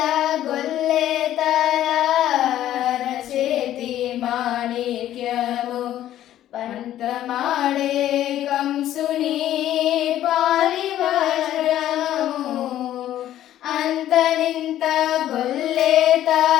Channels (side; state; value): right; quieter; 12.5 dB